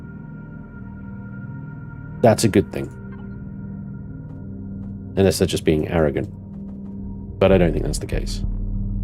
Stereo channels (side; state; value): both; identical; correlation 1.00